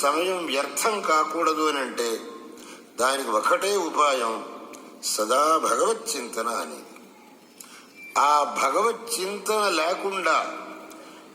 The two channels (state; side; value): identical; both; correlation 1.00